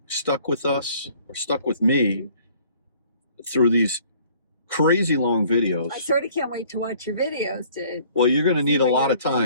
stuck with us or stuck with me through these crazy long videos. I sort of can't wait to watch your videos. Well, you're going to need a what lot your of time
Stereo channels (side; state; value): both; inverted; correlation -0.56